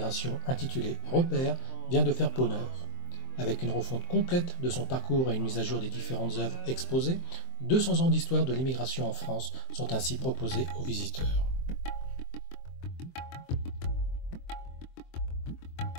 intitulée Repères vient de faire peau neuve. Avec une refonte complète de son parcours et une mise à jour des différentes œuvres exposées, 200 ans d'histoire de l'immigration en France sont ainsi proposés aux visiteurs.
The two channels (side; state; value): right; late; 23 ms